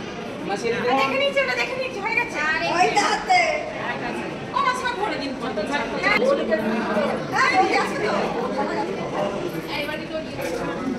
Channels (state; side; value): identical; both; correlation 1.00